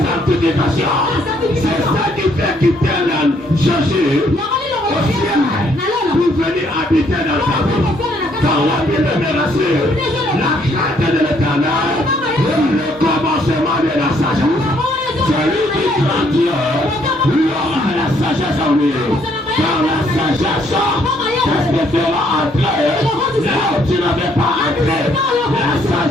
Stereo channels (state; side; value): normal; both; correlation 0.68